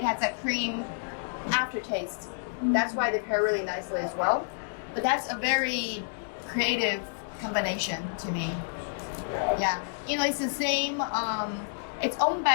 has that cream aftertaste. That's why they pair really nicely as well. But that's a very creative combination to me. Yeah. It's the same, it's owned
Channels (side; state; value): right; silent; digital silence